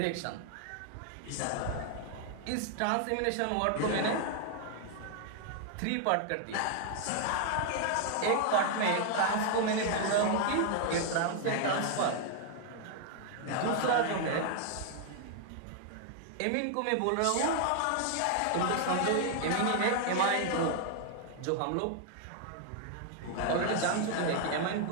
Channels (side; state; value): both; different; correlation 0.00